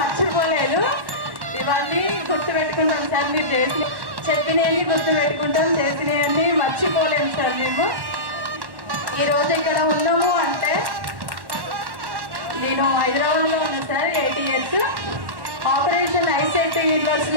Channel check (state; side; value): late; left; 1.1 ms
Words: ఇవన్నీ గుర్తుపెట్టుకుంటాం సార్. మీరు చెప్పినవన్నీ గుర్తుపెట్టుకుంటాం, చేసినవన్నీ మర్చిపోలేము సార్. మేము ఈరోజు ఇక్కడ ఉన్నాము అంటే నేను హైదరాబాద్లో ఉన్నాను సార్. 8 years ఆపరేషన్ ఐసెట్